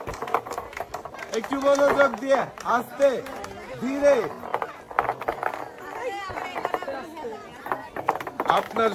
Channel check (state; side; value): identical; both; correlation 1.00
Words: একটু মনোযোগ দিয়ে, আস্তে ধীরে। আপনার